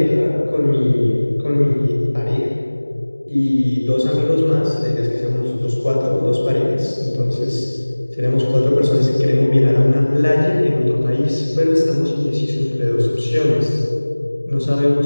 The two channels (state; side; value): inverted; both; correlation -1.00